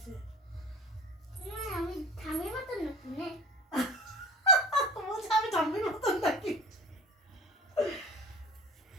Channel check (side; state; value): both; normal; correlation 0.38